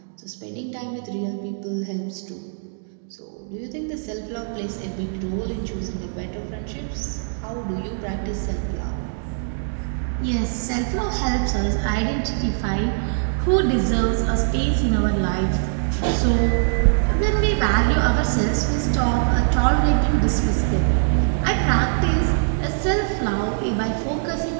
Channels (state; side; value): silent; left; digital silence